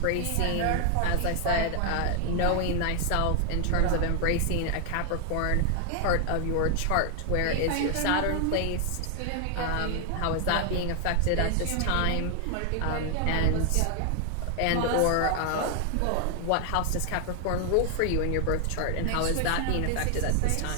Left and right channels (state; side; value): different; both; correlation 0.00